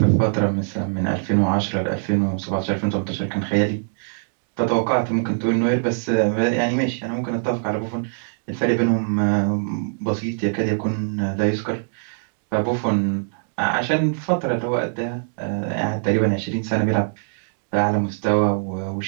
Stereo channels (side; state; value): left; silent; digital silence